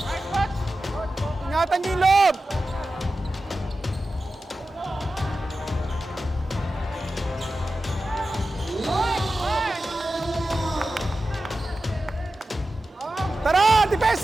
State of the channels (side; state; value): both; normal; correlation 0.93